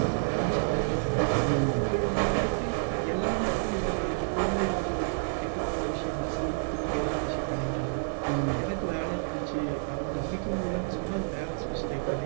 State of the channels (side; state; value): left; silent; 58 dB below the other